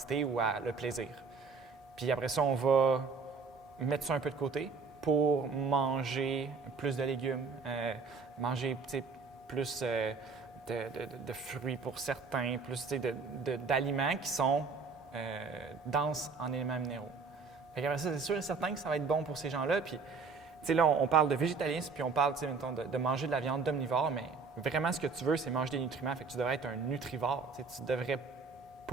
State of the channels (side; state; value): left; quieter; 4.8 dB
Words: ou à le plaisir. Puis après ça, on va mettre ça un peu de côté pour manger plus de légumes, manger plus de fruits pour certains, plus d'aliments qui sont denses en éléments minéraux. Fait qu'après ça, c'est sûr et certain que ça va être bon pour ces gens-là. Puis, là, on parle de végétalisme, puis on parle, mettons, de manger de la viande d'omnivore, mais vraiment, ce que tu veux, c'est manger des nutriments. Fait que tu devrais être un nutrivore. Tu ne devrais